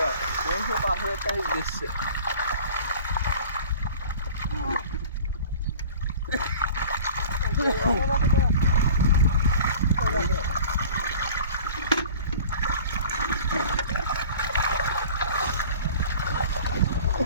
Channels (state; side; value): inverted; both; correlation -0.43